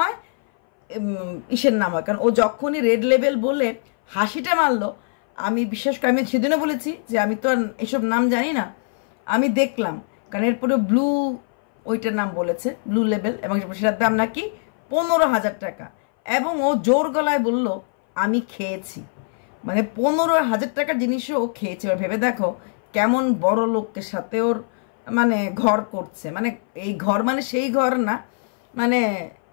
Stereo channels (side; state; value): right; silent; 60 dB below the other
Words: ইসের নাম হয়। কারণ ও যখনই রেড লেভেল বলে হাসিটা মারলো, আমি বিশেষ করে আমি সেদিনও বলেছি যে আমি তো আর এসব নাম জানি না, আমি দেখলাম। কারণ এরপরে ব্লু ওইটার নাম বলেছে, ব্লু লেভেল, এবং সেটার দাম নাকি 15,000 টাকা। এবং ও জোর গলায় বলল আমি খেয়েছি, মানে 15,000 টাকার জিনিসও ও খেয়েছে। এবার ভেবে দেখো কেমন বড় লোকের সাথে ওর মানে ঘর করছে, মানে এই ঘর মানে সেই ঘর না, মানে